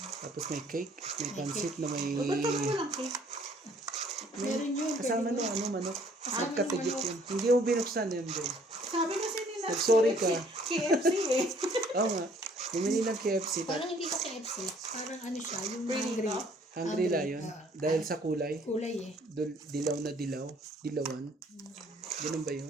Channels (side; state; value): both; normal; correlation 0.60